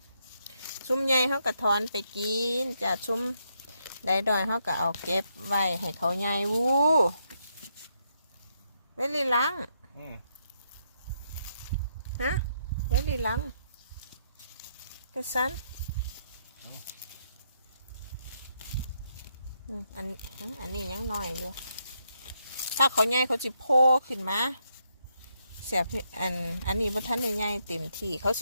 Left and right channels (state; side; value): inverted; both; correlation -0.77